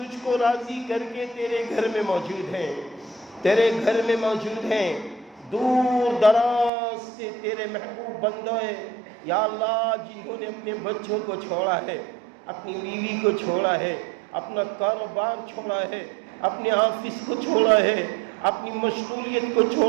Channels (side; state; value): left; drops out; at 6.7 s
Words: کو راضی کر کے تیرے گھر میں موجود ہیں. دور دراز سے تیرے محبوب بندے یا اللہ جنہوں نے اپنے بچوں کو چھوڑا ہے، اپنی بیوی کو چھوڑا ہے، اپنا کاروبار چھوڑا ہے، اپنے آفس کو چھوڑا ہے، اپنی مشغولیت کو